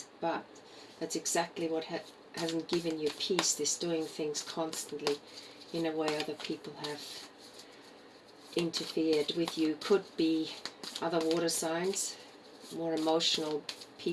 but that's exactly what hasn't given you peace. This doing things constantly in a way other people have interfered with you. Could be other water signs, more emotional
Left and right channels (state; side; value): identical; both; correlation 1.00